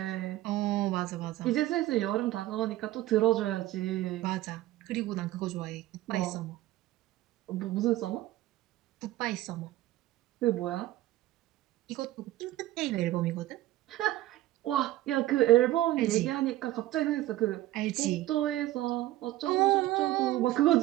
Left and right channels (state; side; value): quieter; left; 15.6 dB